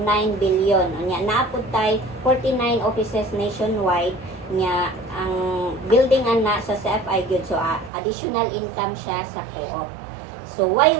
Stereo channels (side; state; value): left; drops out; at 7.9 s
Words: billion. Unya naapod tay 49 offices nationwide. Unya ang building ana sa CFI gyud, so additional income siya sa co-op. So why